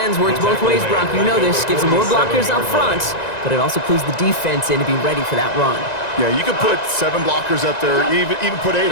works both ways, Brock. You know this. Gives them more blockers up front, but it also clues the defense in to be ready for that run. Yeah, you could put 7 blockers up there, even put 8,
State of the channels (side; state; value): right; late; 1.9 ms